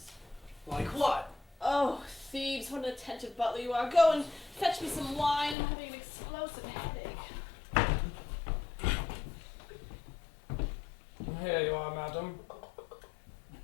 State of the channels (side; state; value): right; drops out; at 5.6 s